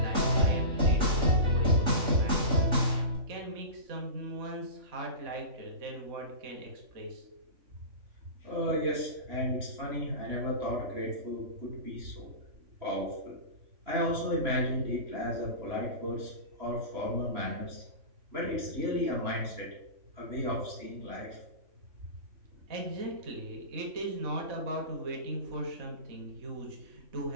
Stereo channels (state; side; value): late; left; 3.5 ms